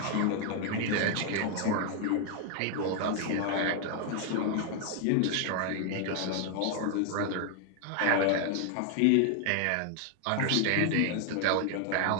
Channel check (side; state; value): both; different; correlation 0.00